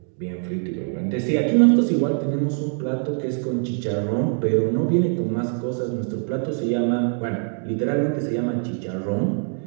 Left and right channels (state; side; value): silent; left; 56 dB below the other